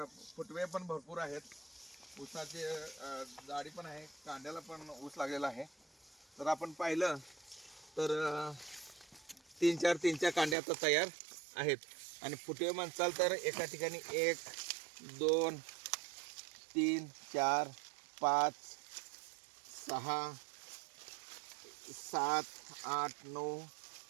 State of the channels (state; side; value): drops out; left; at 10.6 s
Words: फुटवे पण भरपूर आहेत. ऊसाचे जाडी पण आहे, कांड्याला पण ऊस लागलेला आहे. तर आपण पाहिलं तर 3-4 कांड्या आता तयार आहेत. आणि फुटवे म्हणसाल तर एका ठिकाणी 1 2 3 4 5 6 7 8 9